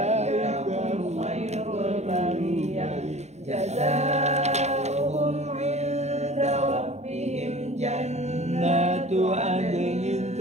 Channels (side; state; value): left; late; 0.32 ms